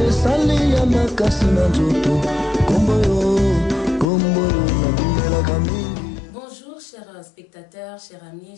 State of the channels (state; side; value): drops out; right; at 4.0 s